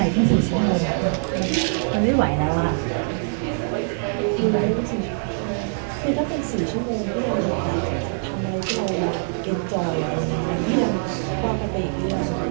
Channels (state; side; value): silent; left; digital silence